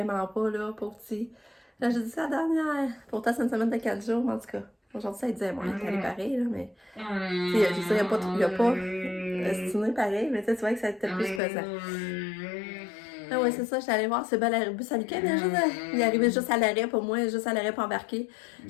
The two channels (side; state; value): right; drops out; at 11.4 s